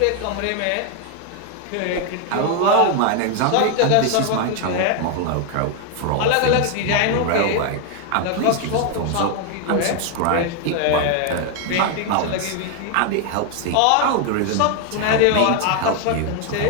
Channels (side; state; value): both; different; correlation 0.00